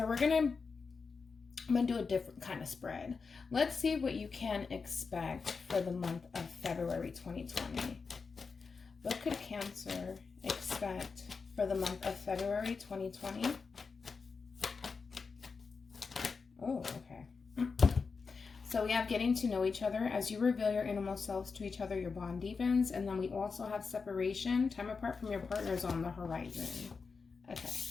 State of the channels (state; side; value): quieter; right; 4.9 dB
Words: I'm gonna do a different kind of spread. Let's see what you can expect for the month of February 2020. What could Cancer expect for the month of February 2020? Oh, okay. So we have getting to know each other. As you reveal your innermost selves to each other, your bond deepens. And then we also have separation. Time apart from your partners on the horizon. Okay.